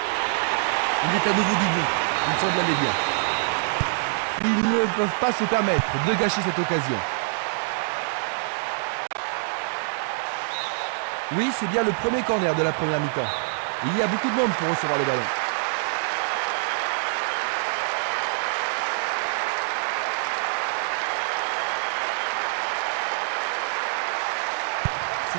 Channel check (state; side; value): silent; left; digital silence